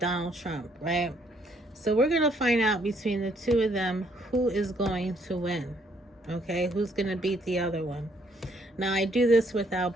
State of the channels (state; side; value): normal; both; correlation 0.68